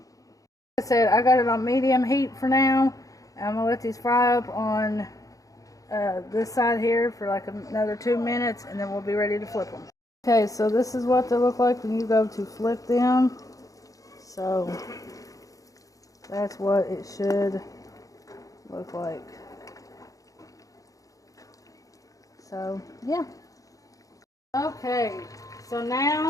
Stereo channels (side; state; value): right; late; 0.17 ms